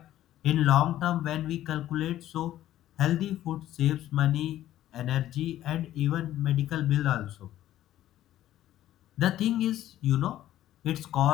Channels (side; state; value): right; quieter; 13.2 dB